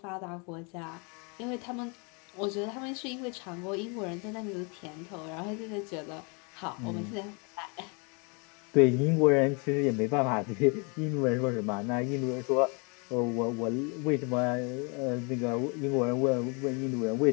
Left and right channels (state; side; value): quieter; right; 33.4 dB